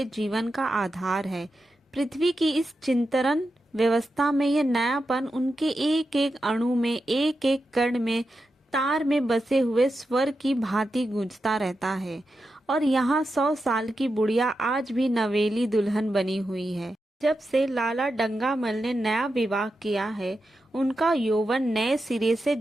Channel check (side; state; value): both; normal; correlation 0.89